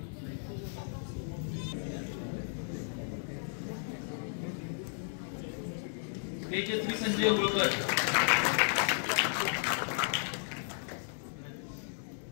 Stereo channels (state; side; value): silent; right; digital silence